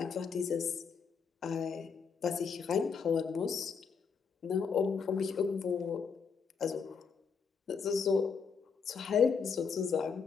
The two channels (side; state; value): right; quieter; 5.9 dB